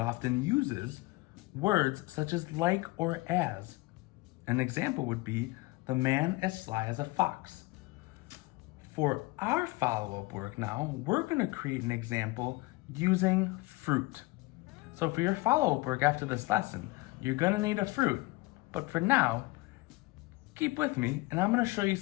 uses words such as like or as. An example would be the man as sly as a fox. For our follow-up work now, we're going to create an example using fruit. So for your follow-up work after this lesson, you're going to need a fruit. But for now, keep with me and I'm going to show you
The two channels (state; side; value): quieter; right; 22.6 dB